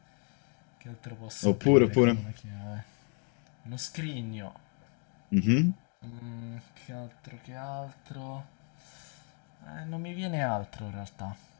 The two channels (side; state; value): right; quieter; 39.3 dB